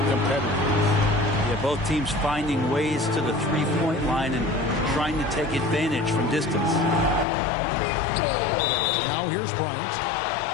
competitors. Yeah, both teams finding ways to the three-point line and trying to take advantage from distance. Now here's Bryant.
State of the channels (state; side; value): drops out; right; at 7.2 s